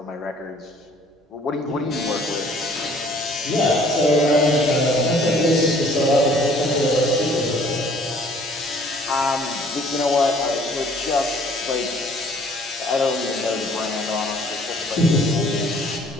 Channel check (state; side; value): normal; both; correlation 0.57